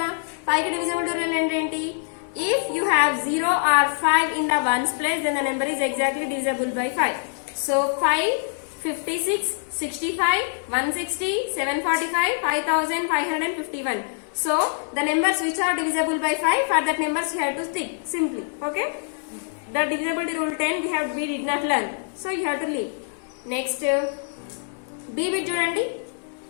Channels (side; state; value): right; silent; digital silence